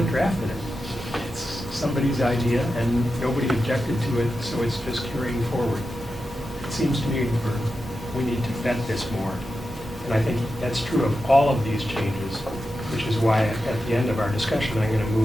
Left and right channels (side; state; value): both; normal; correlation 0.90